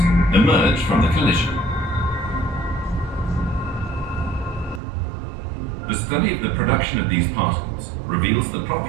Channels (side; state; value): left; drops out; at 4.8 s